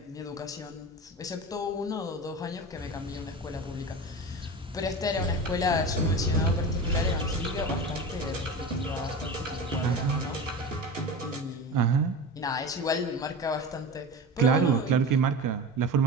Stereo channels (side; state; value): both; normal; correlation 0.29